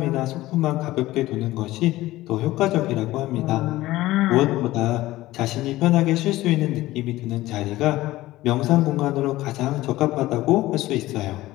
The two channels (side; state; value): right; quieter; 17.0 dB